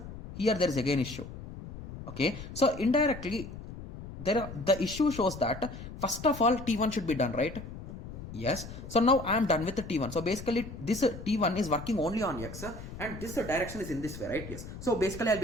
Here there is again issue. Okay. So indirectly, the issue shows that first of all T1 should be done, right? Yes. So now I am done with the T1. So basically this T1 is working only on x and this direction is in this way, right? Yes. So basically I'll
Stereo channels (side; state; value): left; noise; rumble, 12 dB below the sound